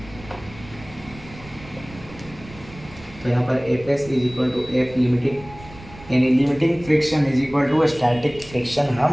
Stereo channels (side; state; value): right; noise; rumble, 18 dB below the sound